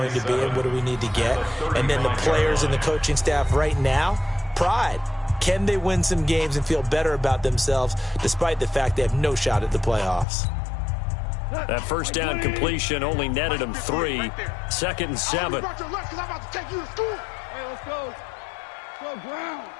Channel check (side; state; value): right; drops out; at 10.2 s